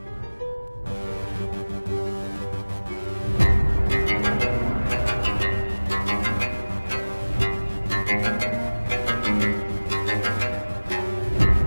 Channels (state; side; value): inverted; both; correlation -1.00